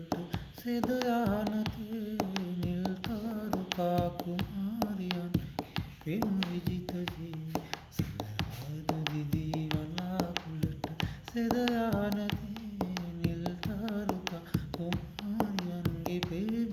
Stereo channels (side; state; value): both; identical; correlation 1.00